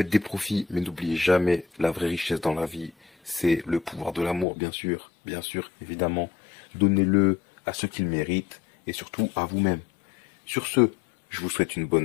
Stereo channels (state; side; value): drops out; right; at 4.5 s